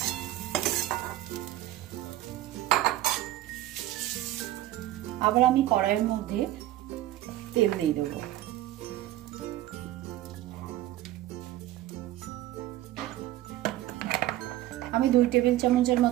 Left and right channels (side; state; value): left; quieter; 14.6 dB